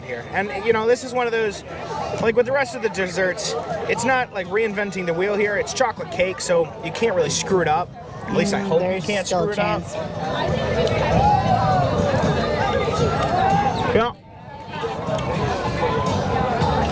here. And you know, this is one of those, like with the rest of the desserts, it's not like reinventing the wheel here. It's chocolate cake, so you can't really screw it up. At least I hope you There's can't still screw a it up. chance. Yeah.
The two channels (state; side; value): identical; both; correlation 1.00